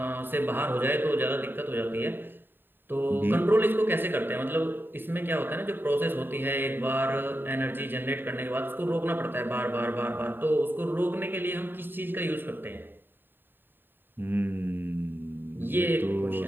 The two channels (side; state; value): left; late; 0.095 ms